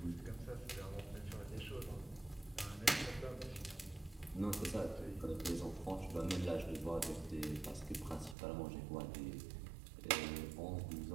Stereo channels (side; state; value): left; drops out; at 8.3 s